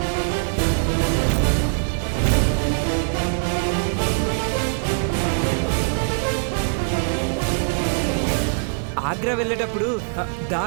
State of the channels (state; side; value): silent; left; 56 dB below the other